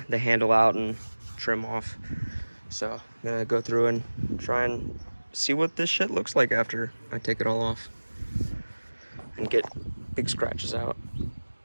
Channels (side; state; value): both; inverted; correlation -1.00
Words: handle out and trim off. So I'm gonna go through and try and see what this shit looks like after I take it all off and get big scratches out.